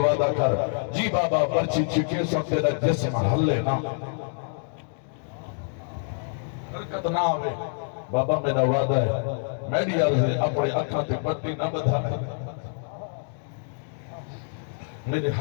کر جی بابا برچی چکے سب تیرا جسم ہلے نا حرکت نہ آوے بابا میرا وعدہ ہے میری عرض اپنے اکھاں تے پٹی نہ بدھا میرے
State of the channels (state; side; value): silent; right; digital silence